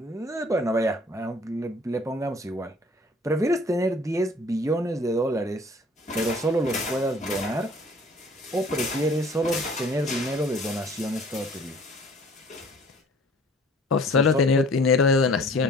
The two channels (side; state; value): both; normal; correlation 0.52